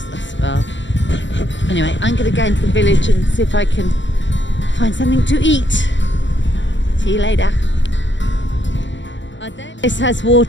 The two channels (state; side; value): late; right; 0.54 ms